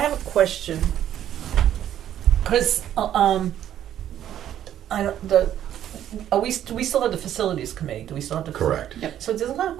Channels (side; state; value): left; quieter; 11.1 dB